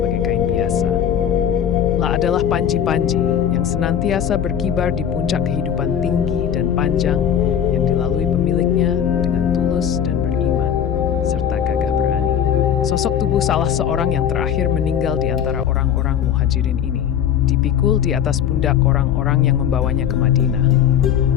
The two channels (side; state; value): right; quieter; 8.9 dB